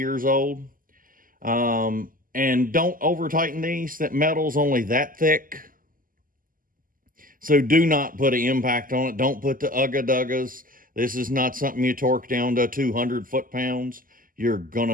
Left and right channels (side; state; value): left; late; 0.41 ms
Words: old. And don't over tighten these. That metal's only that thick. So do not put an impact on it. Don't put the ugga-duggas. This is not something you torque down to 200 foot-pounds. You're going